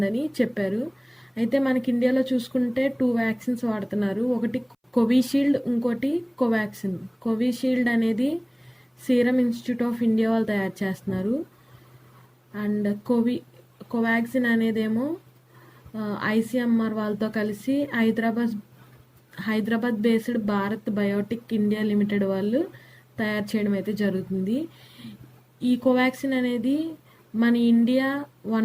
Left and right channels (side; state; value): both; identical; correlation 1.00